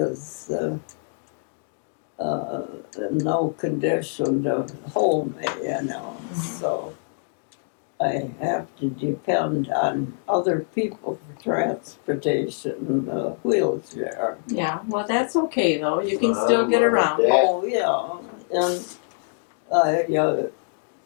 in no condition to hold me, so I have to depend on other people for transportation in a wheelchair. Yeah. Well, that's okay though. You can still get around. Yeah. Oh, yeah, and I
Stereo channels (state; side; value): silent; right; digital silence